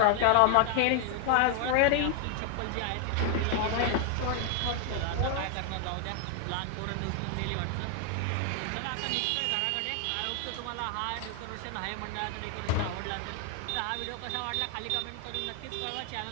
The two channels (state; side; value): different; both; correlation 0.00